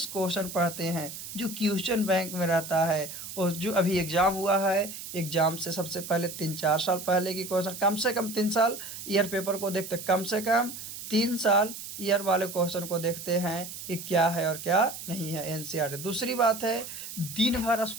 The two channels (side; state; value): right; noise; hiss, 10 dB below the sound